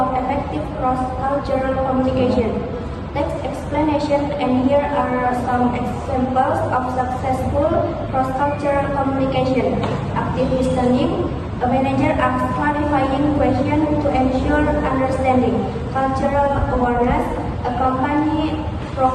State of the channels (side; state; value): both; identical; correlation 1.00